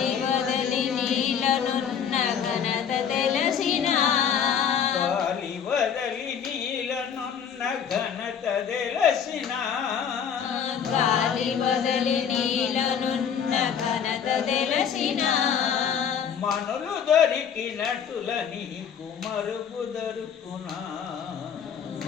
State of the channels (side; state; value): right; quieter; 7.7 dB